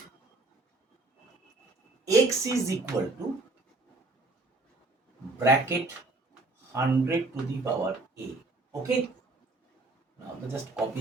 x is equal to bracket 100 to the power a. Okay, now just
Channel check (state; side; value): quieter; left; 3.2 dB